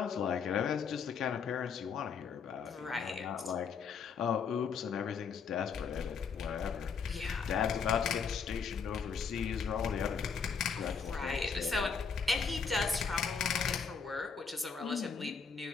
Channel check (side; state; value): right; quieter; 5.9 dB